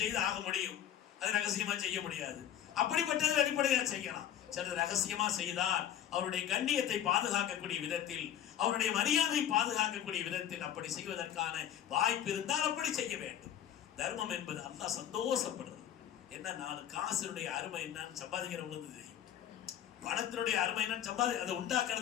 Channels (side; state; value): right; quieter; 10.5 dB